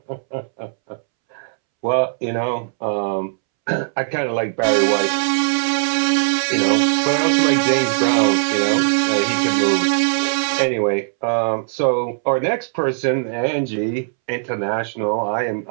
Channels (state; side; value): silent; left; 66 dB below the other